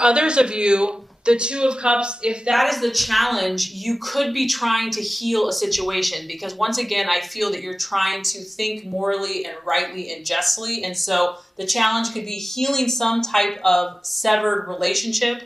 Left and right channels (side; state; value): both; normal; correlation 0.96